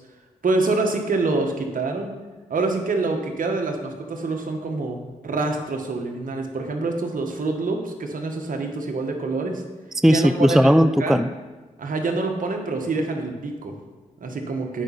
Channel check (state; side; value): normal; both; correlation 0.78